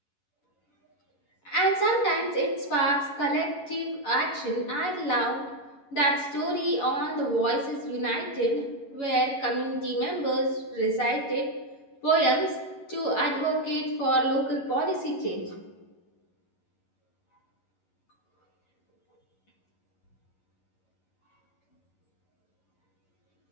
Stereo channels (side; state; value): right; late; 11 ms